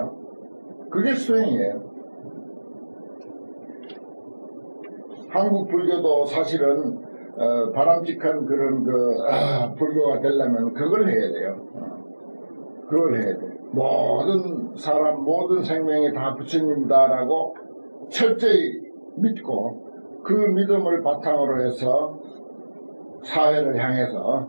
그게 수행이에요. 한국 불교도 사실은 바람직한 그런 불교가 되려면 그걸 해야 돼요. 그걸 해야 돼. 모든 사람, 모든 생명이 다 부처님이다라고 철저히 믿고 그 믿음을 바탕으로 해서 사회를 향해서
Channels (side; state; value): both; inverted; correlation -1.00